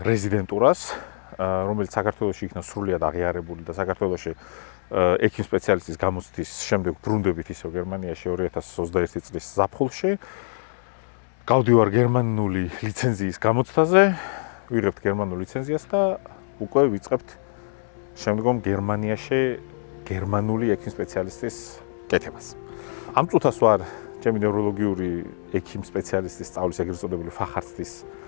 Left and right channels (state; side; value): silent; right; digital silence